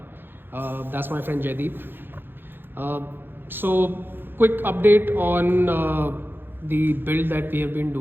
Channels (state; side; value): late; left; 0.10 ms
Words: That's my friend Jaideep. Uh, quick update on the build that we have been